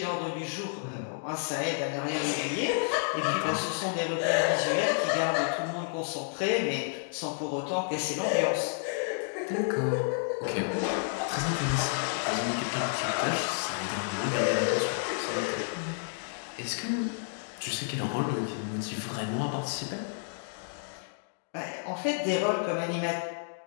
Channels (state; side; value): silent; right; digital silence